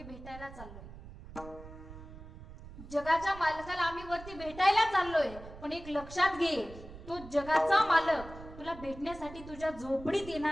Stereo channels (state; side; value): noise; right; rumble, 15 dB below the sound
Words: भेटायला चाललोय, जगाच्या मालकाला आम्ही वरती भेटायला चाललोय, पण एक लक्षात घे, तो जगाचा मालक तुला भेटण्यासाठी तुझ्या झोपडीत